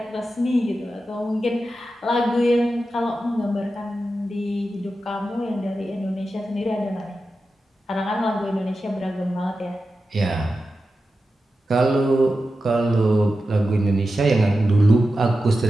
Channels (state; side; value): normal; both; correlation 0.91